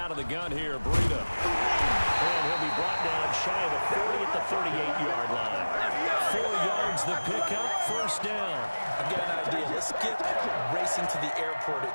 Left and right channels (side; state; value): both; inverted; correlation -1.00